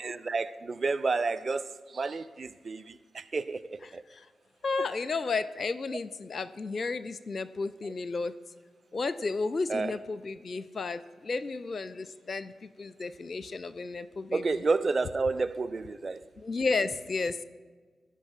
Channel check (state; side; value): normal; both; correlation 0.89